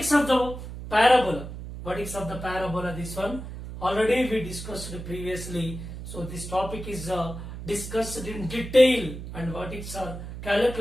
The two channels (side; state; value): right; noise; hum, 10 dB below the sound